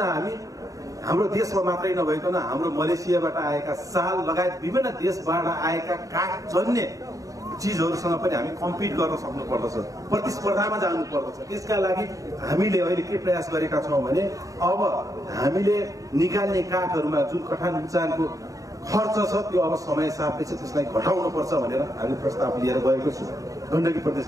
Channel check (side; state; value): left; late; 0.16 ms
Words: हाम्रो देशमा मात्रै नभइकन हाम्रो मलेसियाबाट आएका साल लगायत विभिन्न देशबाट आएका काठजन्य चिजहरूसँग पनि हामी कम्पिट गर्न सक्नु पर्दछ, प्रतिस्पर्धामा जानु पर्दछ। त्यसका लागि हामीले अहिले के प्रयास गरेका छौँ भने अब हामीले निकाल्ने काठहरूमा जुन कठान उचानको खर्च छ त्यो अब समय सापेक्ष त्यसलाई घटाउनुपर्छ भनेर हामी प्रस्ताव लिएर गएको छु। गण्डकी